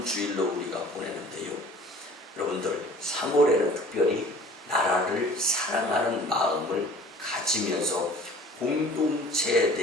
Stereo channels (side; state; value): both; normal; correlation 0.48